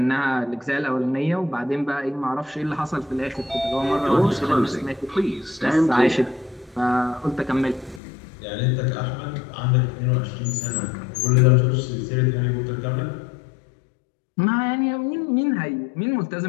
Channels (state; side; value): drops out; right; at 8.0 s